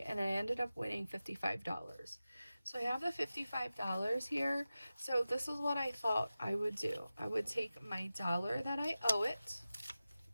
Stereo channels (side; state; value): both; inverted; correlation -0.95